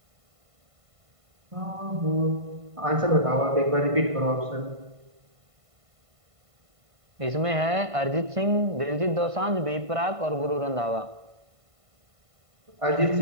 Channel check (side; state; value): left; late; 1.5 ms